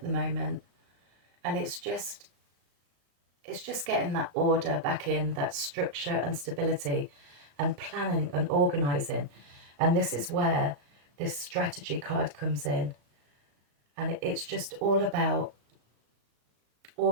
the moment, and it's just getting that order back in, that structure and stability, and planning and organizing. And this is where this strategy card comes in, and it's just all about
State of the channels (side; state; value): left; late; 35 ms